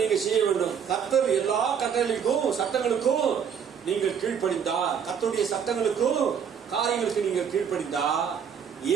செய்ய வேண்டும். கர்த்தர் எல்லா கட்டளைக்கும் சட்டங்களுக்கும் நீங்கள் கீழ்ப்படிந்தா, கர்த்தருடைய சட்டங்களுக்கும் காரியங்களுக்கு நீங்கள் கீழ்ப்படிந்தா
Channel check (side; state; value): left; quieter; 7.5 dB